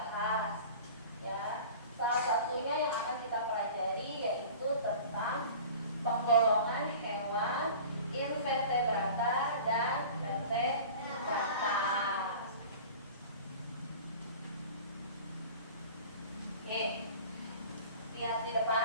Ya, salah satunya yang akan kita pelajari yaitu tentang penggolongan hewan invertebrata dan vertebrata. Lihat di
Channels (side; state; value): both; inverted; correlation -0.40